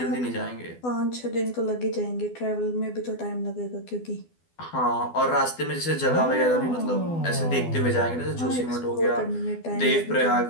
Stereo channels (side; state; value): right; late; 12 ms